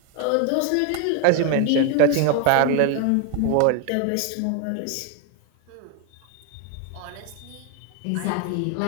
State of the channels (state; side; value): different; both; correlation 0.01